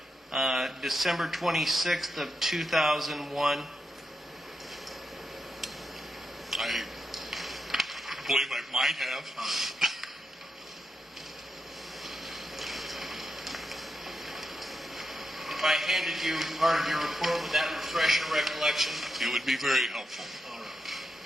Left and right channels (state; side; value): normal; both; correlation 0.85